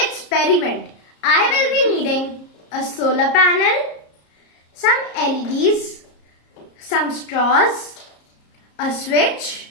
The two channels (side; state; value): right; late; 34 ms